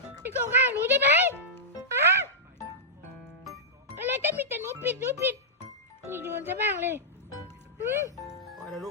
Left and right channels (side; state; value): both; normal; correlation -0.11